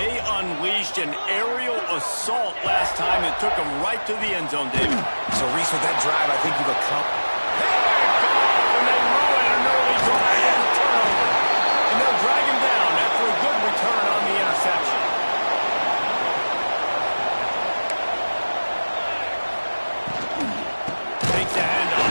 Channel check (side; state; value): both; inverted; correlation -1.00